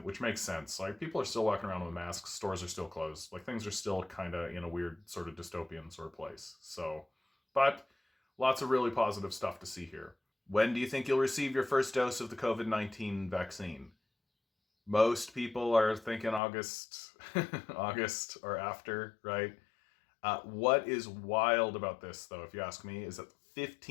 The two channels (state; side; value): drops out; right; at 16.4 s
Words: which makes sense. Like, people are still walking around with masks, stores are still closed. Like, things are still kind of in a weird sort of dystopian sort of place. So, but lots of really positive stuff to see here. When do you think you'll receive your first dose of the COVID-19 vaccine? Most people are thinking August, August or after, right? What is wild about this, though, if you ask me, is that